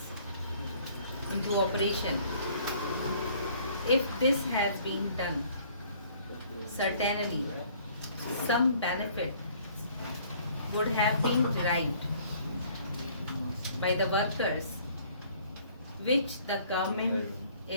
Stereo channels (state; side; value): inverted; both; correlation -0.58